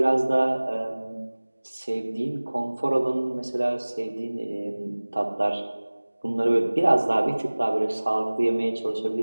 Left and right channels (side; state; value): both; inverted; correlation -1.00